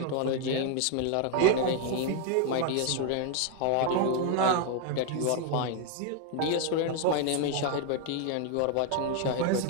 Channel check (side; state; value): both; different; correlation 0.00